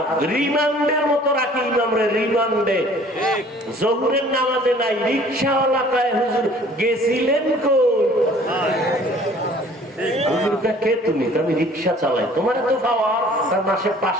রিমান্ডের মতো রাখি ইমামরে, রিমান্ডে। জহুরের নামাজে নাই, রিক্সাওয়ালা কয় হুজুর গেছিলেন কই? হুজুরটা কে তুমি? আমি রিক্সা চালাই। তোমার তো পাওয়া, তার মাসে 5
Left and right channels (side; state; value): both; normal; correlation 0.52